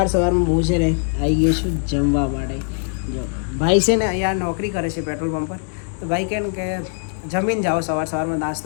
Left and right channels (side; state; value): right; silent; 62 dB below the other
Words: હું છે ને આવી ગયો છું જમવા માટે. જો ભાઈ છે ને અહીંયા નોકરી કરે છે પેટ્રોલ પંપ પર. તો ભાઈ કહે ને કે જમીને જાઓ, સવારમાં